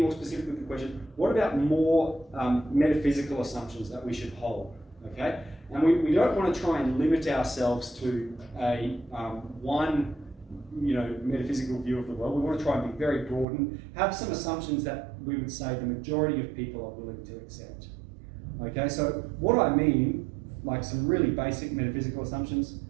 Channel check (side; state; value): left; drops out; at 13.5 s